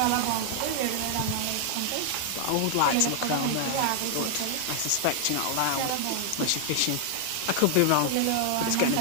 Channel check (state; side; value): different; both; correlation 0.00